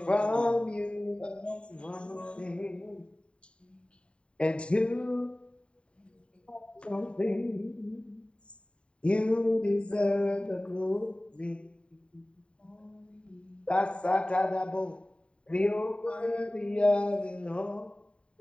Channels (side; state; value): right; late; 0.056 ms